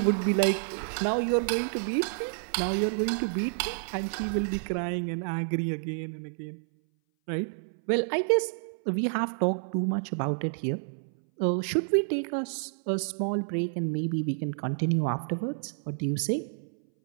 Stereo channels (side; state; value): left; silent; 58 dB below the other